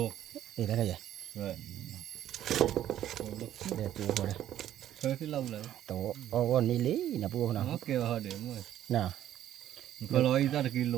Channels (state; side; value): quieter; left; 11.8 dB